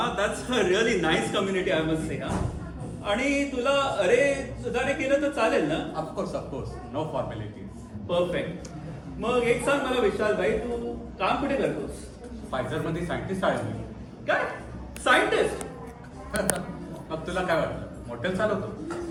That's a really nice community I must say. आणि तुला अरे सुधारे केलं तर चालेल ना? Of course no formalities. परफेक्ट. मग एक सांग मला विशालबाई, तू काम कुठे करतोस? फायझरमध्ये सायंटिस्ट आहे मी. काय सायंटिस्ट? मग तुला काय वाटलं, मॉडेल चालवतो?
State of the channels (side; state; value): both; identical; correlation 1.00